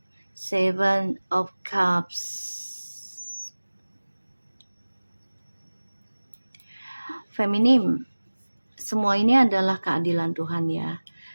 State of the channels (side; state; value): both; inverted; correlation -1.00